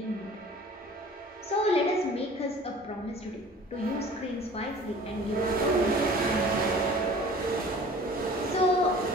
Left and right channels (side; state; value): both; normal; correlation 0.46